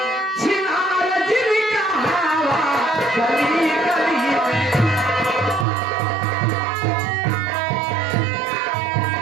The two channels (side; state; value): left; drops out; at 5.7 s